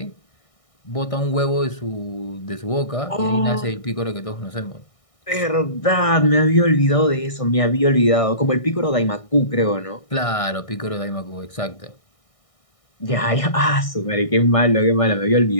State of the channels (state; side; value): late; right; 1.6 ms